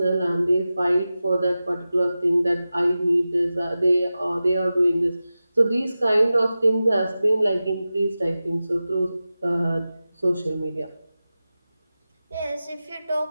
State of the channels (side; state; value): both; inverted; correlation -0.94